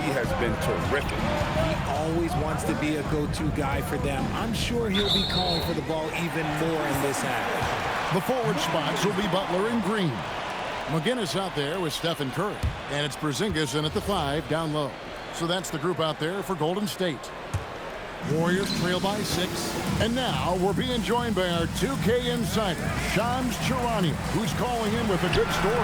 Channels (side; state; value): both; identical; correlation 1.00